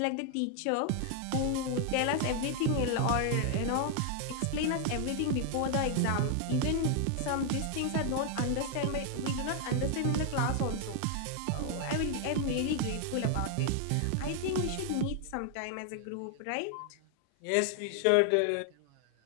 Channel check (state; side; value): different; both; correlation 0.00